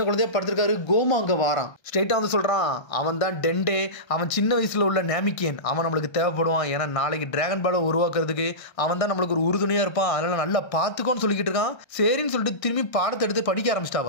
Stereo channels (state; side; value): late; right; 1.3 ms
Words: குழந்தையா படுத்திருக்காரு. கோமா அங்க வாரான். ஸ்ட்ரெயிட்டா வந்து சொல்றான், அவன் தான் டெண்டே, அவன் சின்ன வயசுல உள்ள நேமிக்கியன், அவன் நம்மளுக்கு தேவைப்படுவான். ஏன்னா நாளைக்கு டிராகன் பாலை உருவாக்குறதுக்கு அவன் தான் நம்மளுக்கு ஒரு உறுதுணையா இருப்பான், அதனால நல்லா பாத்துக்கோன்னு சொல்லிக்கிட்டு இருக்கான். சரின்னு சொல்லிட்டு திரும்பி பாடத்தை எடுத்து படிக்க